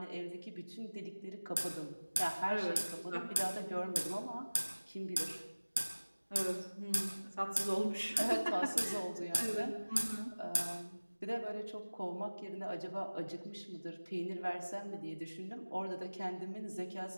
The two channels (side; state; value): both; inverted; correlation -1.00